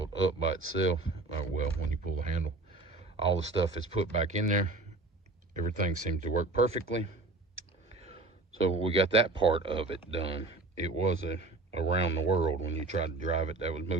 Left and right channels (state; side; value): quieter; left; 3.2 dB